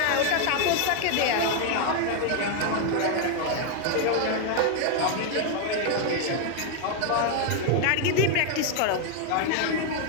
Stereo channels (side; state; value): both; different; correlation 0.00